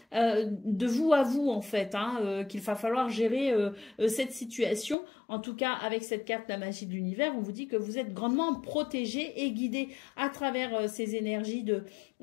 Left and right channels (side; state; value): right; drops out; at 5.0 s